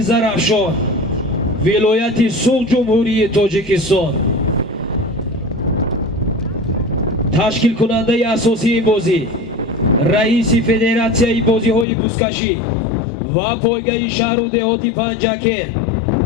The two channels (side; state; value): right; drops out; at 11.9 s